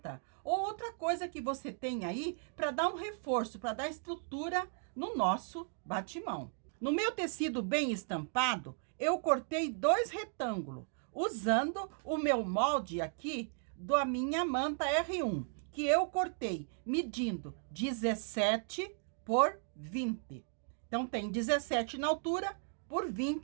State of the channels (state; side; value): silent; left; 54 dB below the other